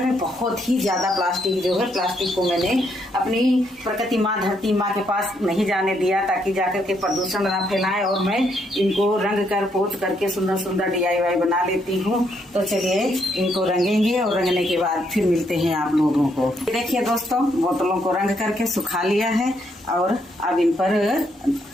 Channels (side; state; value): both; normal; correlation 0.75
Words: बहुत ही ज्यादा प्लास्टिक जो है, प्लास्टिक को मैंने अपनी प्रकृति माँ धरती माँ के पास नहीं जाने दिया, ताकि जाकर के प्रदूषण ना फैलाए। और मैं इनको रंग कर पोत करके सुंदर सुंदर DIY बना लेती हूँ। तो चलिए इनको रंगेंगे और रंगने के बाद फिर मिलते हैं आप लोगों को। देखिए दोस्तों, बोतलों को रंग करके सुखा लिया है और अब इन पर